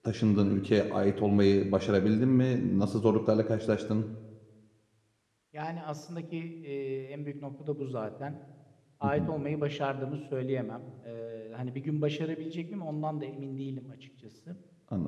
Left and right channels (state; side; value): identical; both; correlation 1.00